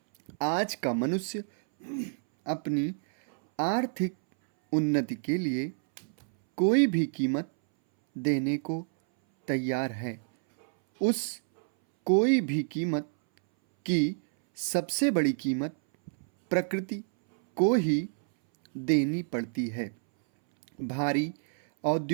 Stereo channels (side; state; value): left; silent; 59 dB below the other